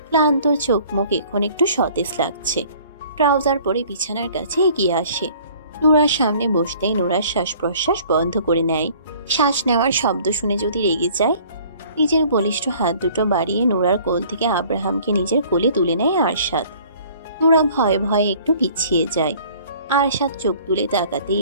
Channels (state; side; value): inverted; both; correlation -0.53